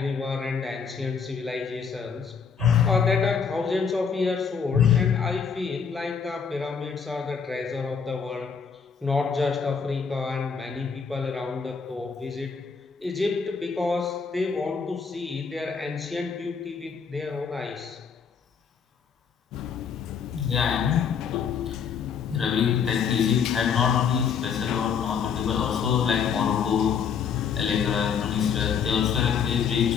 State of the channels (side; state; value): right; quieter; 6.5 dB